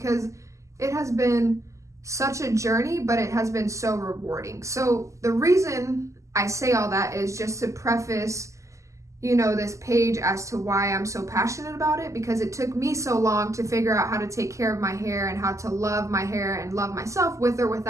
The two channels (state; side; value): late; left; 0.15 ms